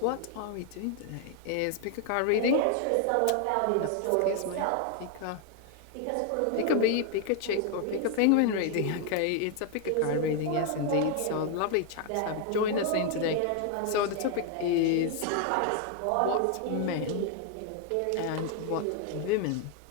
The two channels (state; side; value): different; both; correlation 0.01